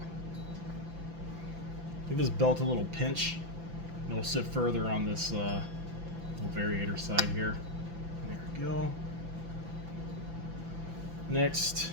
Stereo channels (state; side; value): late; left; 5.9 ms